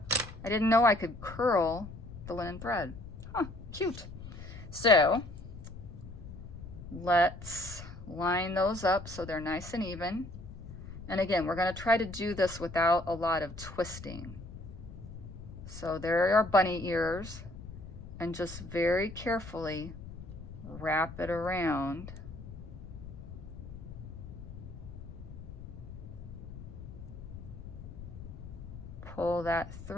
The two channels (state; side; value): noise; left; rumble, 12 dB below the sound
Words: I didn't know I could curl the linen thread. Huh, cute. So let's line those up so they're nice and even. And again, we're going to try to do this without a lot of twisting. So there are bunny ears, and just very carefully wrap it around. Pull that